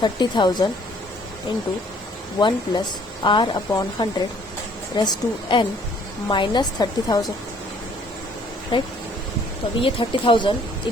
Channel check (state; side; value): normal; both; correlation 0.60